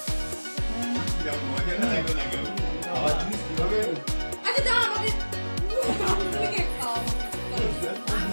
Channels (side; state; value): both; inverted; correlation -1.00